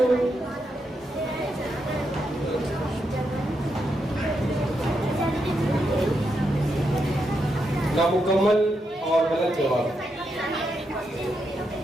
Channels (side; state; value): both; normal; correlation 0.83